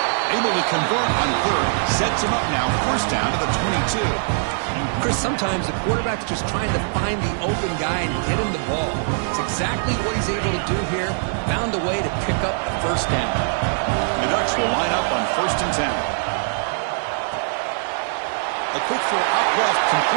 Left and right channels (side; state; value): left; silent; digital silence